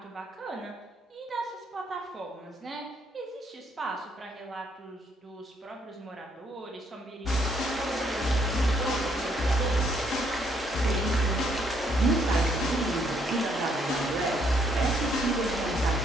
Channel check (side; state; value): both; normal; correlation 0.70